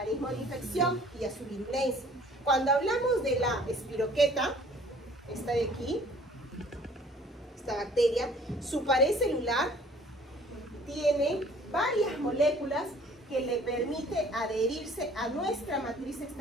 de infección y a su virulencia. Cuando hablamos de la espiroqueta, esta de aquí, esta bacteria, su pared celular tiene varias moléculas que le permite adherirse a nuestra matriz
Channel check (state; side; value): normal; both; correlation 0.54